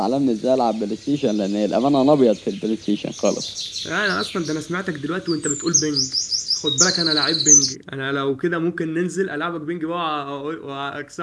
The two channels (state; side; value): identical; both; correlation 1.00